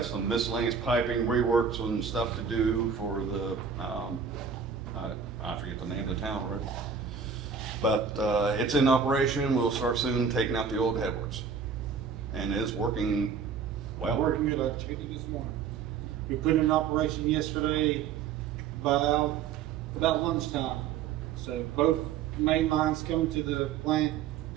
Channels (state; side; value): quieter; left; 6.6 dB